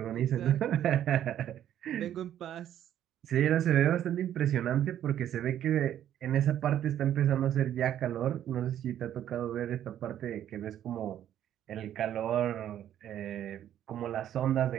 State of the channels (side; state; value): left; quieter; 11.0 dB